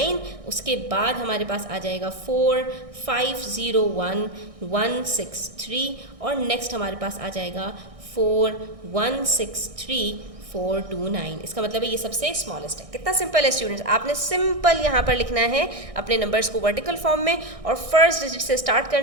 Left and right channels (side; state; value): left; late; 1.6 ms